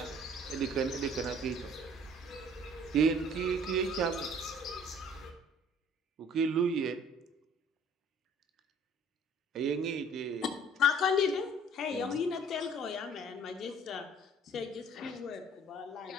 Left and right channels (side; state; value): both; normal; correlation 0.54